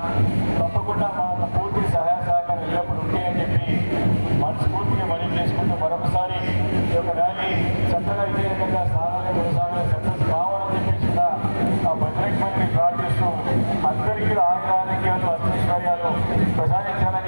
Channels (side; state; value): both; inverted; correlation -1.00